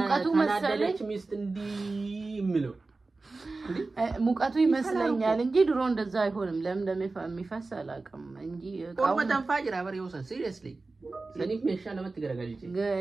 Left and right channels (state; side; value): quieter; left; 3.6 dB